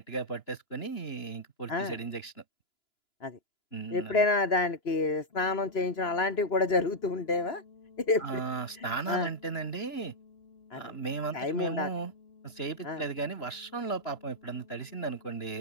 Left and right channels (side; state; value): right; late; 2.9 ms